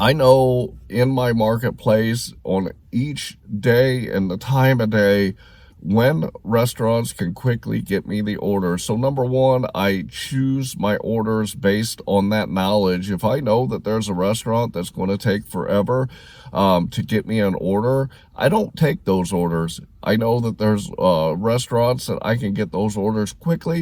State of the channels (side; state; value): both; identical; correlation 1.00